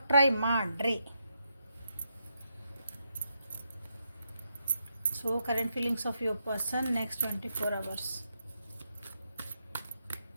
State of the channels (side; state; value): both; inverted; correlation -0.82